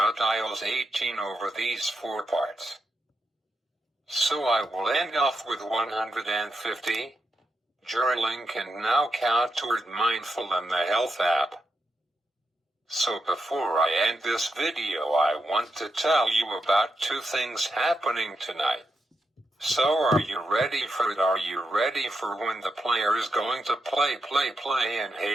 iOS 18 over these 4 parts. So I will end off with 150. Journaling can now count toward Mindful and the Health app. So before I end this video, I want to tell you about 2 things happening tonight. So are you ready for it? Are you ready for when the player is going to play and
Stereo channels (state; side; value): normal; both; correlation 0.84